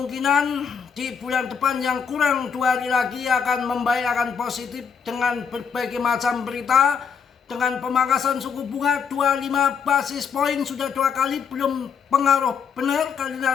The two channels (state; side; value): quieter; right; 6.7 dB